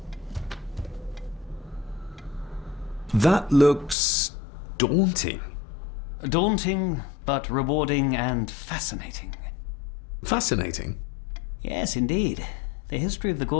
That looks daunting. Daunting, but rewarding and fascinating. Fascinating? Yes, indeed. The history of the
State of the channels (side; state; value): right; drops out; at 4.0 s